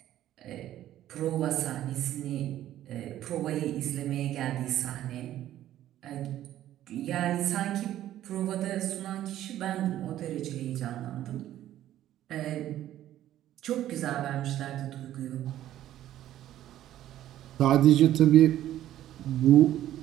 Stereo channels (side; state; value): left; quieter; 12.8 dB